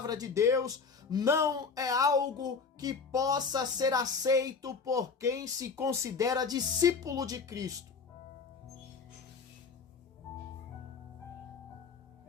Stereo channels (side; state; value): right; quieter; 5.1 dB